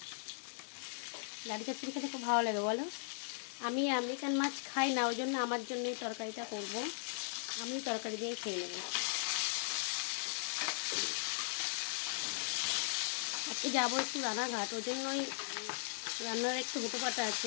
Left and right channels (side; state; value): right; silent; digital silence